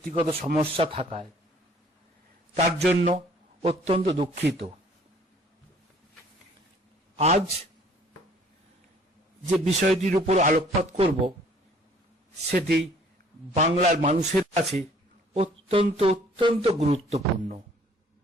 সমস্যা থাকায়। তার জন্য অত্যন্ত দুঃখিত। আজ যে বিষয়টির উপর আলোকপাত করব সেটি বাংলার মানুষের কাছে অত্যন্ত অত্যন্ত গুরুত্বপূর্ণ।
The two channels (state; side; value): normal; both; correlation 0.57